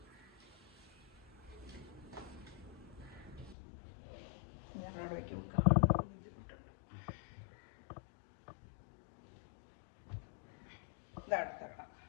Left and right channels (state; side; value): drops out; right; at 3.6 s